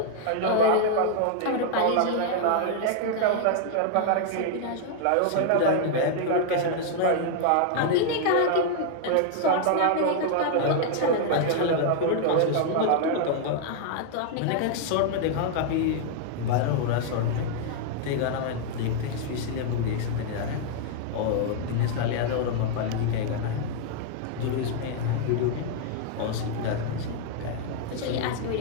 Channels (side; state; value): both; different; correlation 0.00